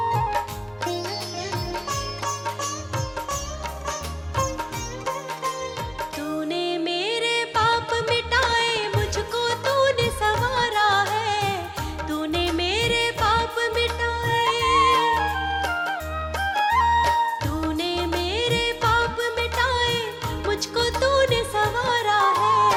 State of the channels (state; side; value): identical; both; correlation 1.00